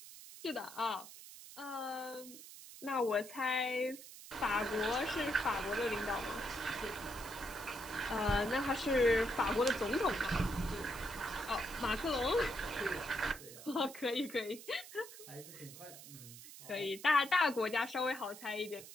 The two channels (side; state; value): right; noise; hiss, 15 dB below the sound